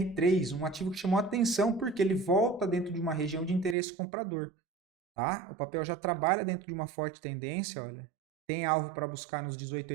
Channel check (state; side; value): drops out; left; at 3.8 s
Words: um ativo que chamou atenção porque ele volta dentro de uma região de interesse comprador. Tá? O papel já trabalha dentro de uma forte tendência, olha. Tem alvo para buscar nos